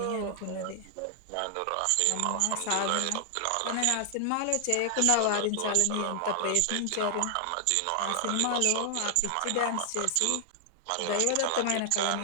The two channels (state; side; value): different; both; correlation 0.00